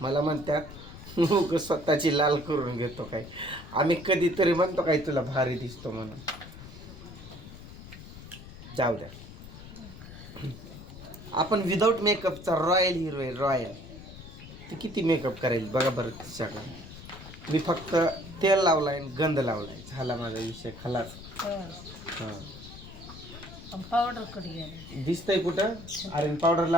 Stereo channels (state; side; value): noise; left; rumble, 15 dB below the sound